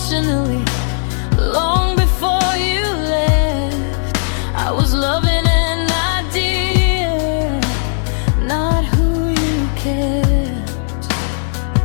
long before you left. I was loving an idea, not who you kept.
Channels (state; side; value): silent; right; digital silence